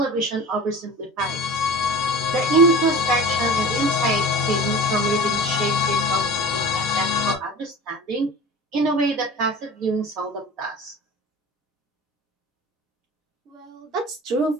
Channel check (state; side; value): normal; both; correlation 0.36